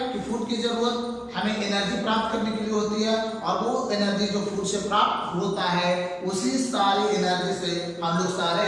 कि फूड की जरूरत हमें एनर्जी प्राप्त करने के लिए होती है और वो एनर्जी जो फूड से प्राप्त होता है, उसी सारी एनर्जी से हम लोग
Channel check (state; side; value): identical; both; correlation 1.00